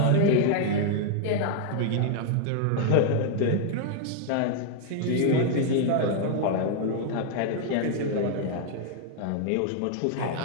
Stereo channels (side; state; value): both; different; correlation 0.00